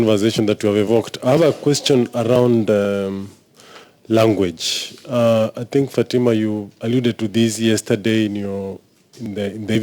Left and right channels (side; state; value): both; identical; correlation 1.00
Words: that you have evoked. I have a question around language. I think, Fatima, you alluded to this yesterday in the